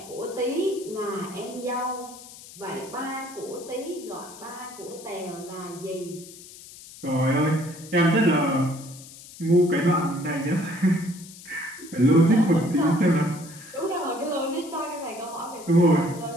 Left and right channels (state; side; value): noise; left; hiss, 17 dB below the sound